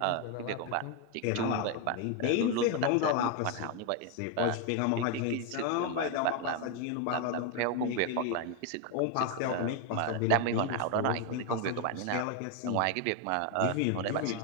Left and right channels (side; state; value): both; different; correlation 0.01